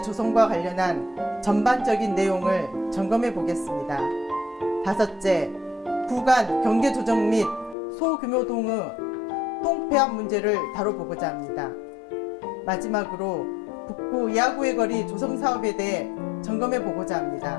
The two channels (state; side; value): drops out; right; at 7.8 s